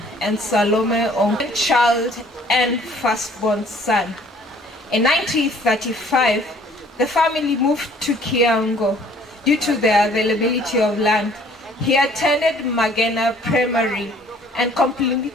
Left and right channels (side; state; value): both; normal; correlation 0.57